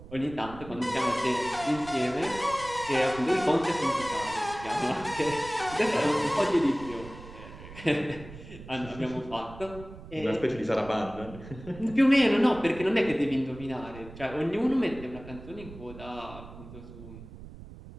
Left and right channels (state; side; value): noise; right; rumble, 15 dB below the sound